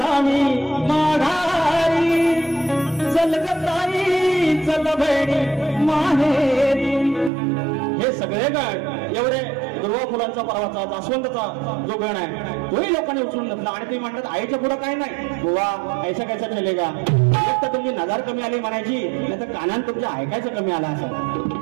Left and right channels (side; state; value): left; drops out; at 7.3 s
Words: मी माघारी. चल गताई चल बहिणी माहेरी. हे सगळे गण एवढे दुर्वा फुलांचा परवाचा जास्वंदचा जो गण आहे तोही लोकांनी उचलून घेतला. आणि ते म्हणतात आईच्या पुढं काय नाही बुवा, ऐसा कैसा चलेगा. एक तर तुमची नजर कमी आली म्हणायची, नाही तर कानात तुमच्या ऐकायचं कमी आला असं.